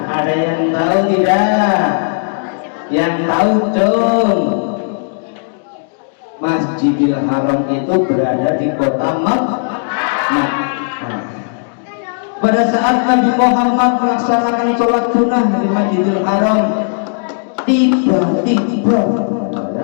Ada yang tahu tidak? Yang tahu dong. Masjidil Haram itu berada di kota Makkah. Pada saat Nabi Muhammad melaksanakan sholat sunnah di Masjidil Haram, tiba-tiba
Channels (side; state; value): right; silent; digital silence